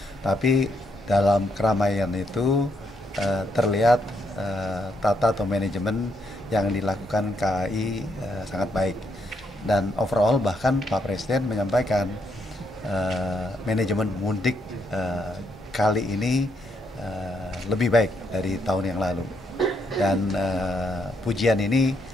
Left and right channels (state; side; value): normal; both; correlation 0.77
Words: Tapi dalam keramaian itu terlihat tata atau manajemen yang dilakukan KAI sangat baik. Dan overall bahkan Pak Presiden menyampaikan manajemen mudik kali ini lebih baik dari tahun yang lalu. Dan pujian ini